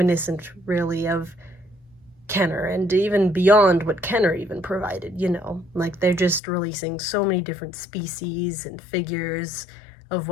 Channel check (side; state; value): right; drops out; at 6.4 s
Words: really, of Kenner, and even beyond what Kenner even provided, you know. Like, they're just releasing so many different species and figures of